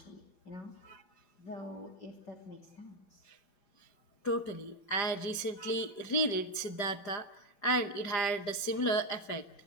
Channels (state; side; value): late; right; 5.0 ms